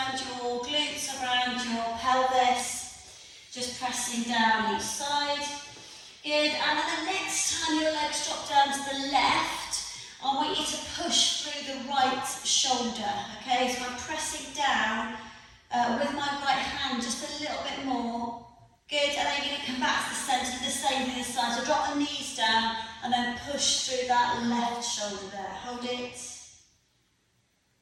your glutes, around your pelvis. Just pressing down each side. Good, and then the next time your legs drop down to the left, I want you to push through the right shoulder, okay? So I'm pressing down with my right hand just a little bit more. Good, and then you're going to come back to the centre, the same thing this side. So drop the knees down and then push through that left shoulder there. Hold it.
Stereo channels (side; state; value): both; identical; correlation 1.00